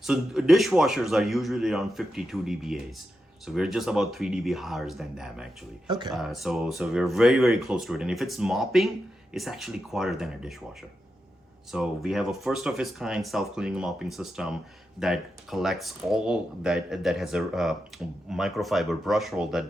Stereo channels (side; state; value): both; normal; correlation 0.88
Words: So dishwashers are usually around 52 dBAs. So we're just about 3 dB higher than them, actually. Okay. So we're very, very close to it. And if it's mopping, it's actually quieter than a dishwasher. So we have a first of its kind self-cleaning mopping system that collects all that has a microfiber brush roll that